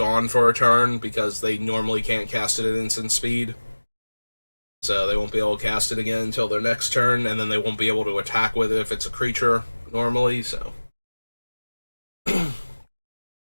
for a turn, because they normally can't cast it at instant speed. So they won't be able to cast it again until their next turn, and then they won't be able to attack with it if it's a creature normally, so.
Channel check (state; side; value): inverted; both; correlation -1.00